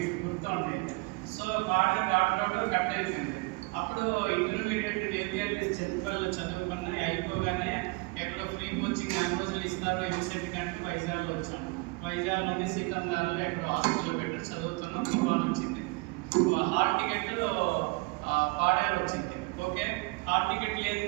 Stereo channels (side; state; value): left; quieter; 27.1 dB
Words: గుర్తుండే. So Paderu water road cut అయిపోయింది. అప్పుడు ఇంటర్మీడియట్ ఏపీఎల్ఎస్ చింతపల్లిలో చదువుకున్న అయిపోగానే ఎక్కడో ఫ్రీ కోచింగ్ 4 రోజులు ఇస్తారు ఎంసెట్ కంటే వైజాగ్లో వచ్చాం. వైజాగ్లోని సీతందారులో ఎక్కడో హాస్పిటల్లో పెట్టి చదువుతున్నాం. తుఫాన్ వచ్చింది. హాల్ టికెట్ పాడేరు వచ్చింది. ఓకే, హాల్ టికెట్